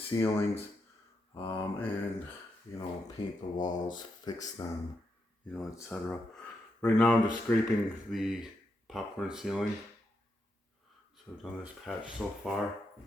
and, paint the walls, fix them, etc. Right now I'm just scraping the popcorn ceiling. So I've done this patch so far.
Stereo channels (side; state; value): both; normal; correlation 0.83